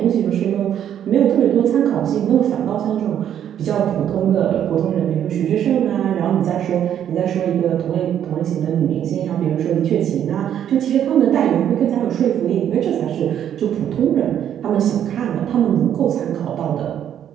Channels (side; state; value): left; quieter; 9.9 dB